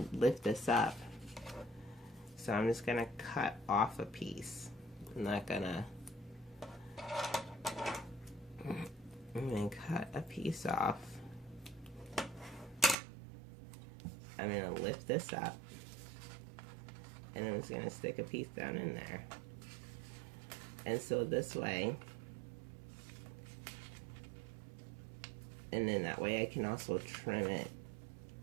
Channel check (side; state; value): left; drops out; at 13.0 s